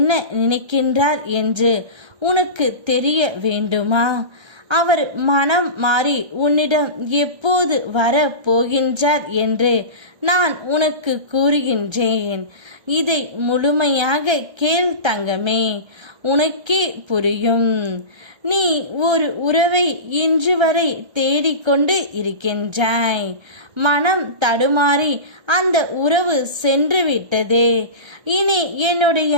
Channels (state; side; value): late; left; 1.3 ms